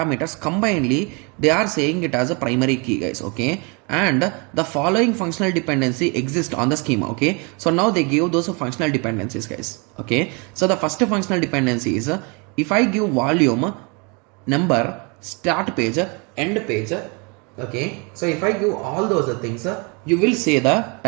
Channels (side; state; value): left; quieter; 31.6 dB